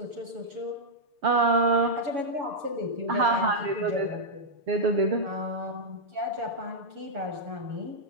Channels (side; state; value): left; late; 6.6 ms